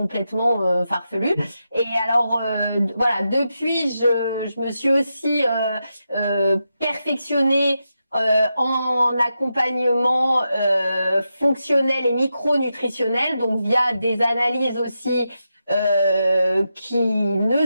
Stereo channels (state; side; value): inverted; both; correlation -0.87